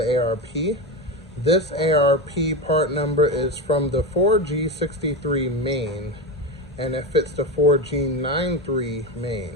ARP. This ARP part number is from the 4G63 main, and it fits the 4G93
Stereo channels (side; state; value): both; normal; correlation 0.18